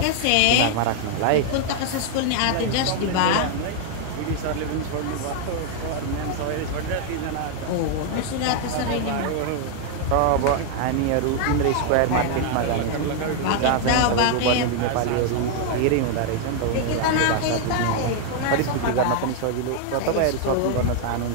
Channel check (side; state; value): both; different; correlation 0.00